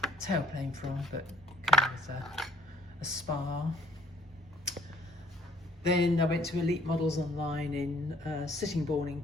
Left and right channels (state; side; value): normal; both; correlation 0.57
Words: tailplane from, but it came with a spar. Then I went to Elite Models online in Sittingbourne in